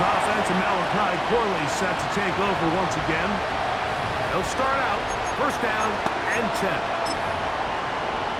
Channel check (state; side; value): identical; both; correlation 1.00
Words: offense and Malachi Corley set to take over once again. They'll start out first down and 10.